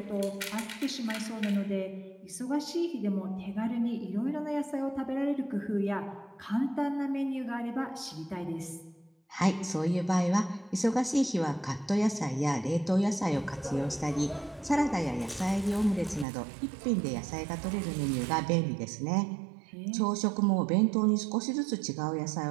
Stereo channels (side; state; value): left; drops out; at 16.2 s